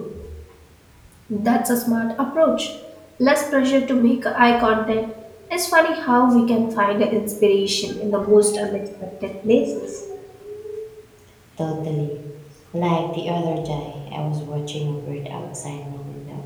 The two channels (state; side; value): identical; both; correlation 1.00